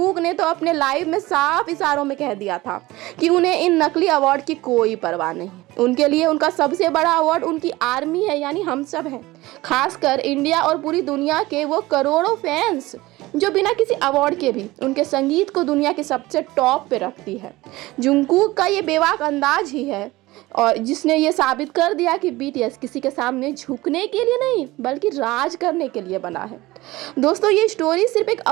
ने तो अपने लाइव में साफ इशारों में कह दिया था कि उन्हें इन नकली अवार्ड की कोई परवाह नहीं। उनके लिए उनका सबसे बड़ा अवार्ड उनकी आर्मी है, यानी हम सब हैं, खासकर इंडिया और पूरी दुनिया के वो करोड़ों फैंस जो बिना किसी अवार्ड के भी उनके संगीत को दुनिया के सबसे टॉप पे रखती है। जुंगकुक का ये बेबाक अंदाज ही है और जिसने ये साबित कर दिया कि बीटीएस किसी के सामने झुकने के लिए नहीं, बल्कि राज करने के लिए बना है। दोस्तों, ये स्टोरी सिर्फ एक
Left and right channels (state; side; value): quieter; left; 19.3 dB